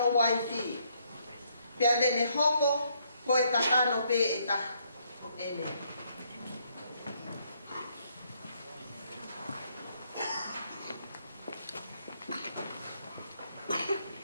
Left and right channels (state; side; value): inverted; both; correlation -0.71